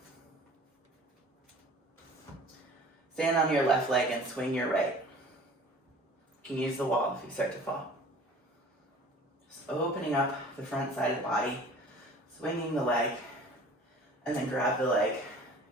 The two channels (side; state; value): both; normal; correlation 0.46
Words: Stand on your left leg and swing your right. You can use the wall if you start to fall. Just opening up the front side of the body, swinging the leg, and then grab the leg